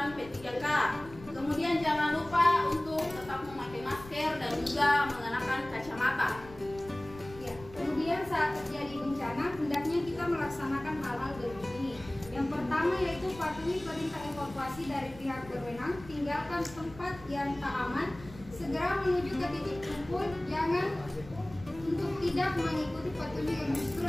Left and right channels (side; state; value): left; noise; rumble, 18 dB below the sound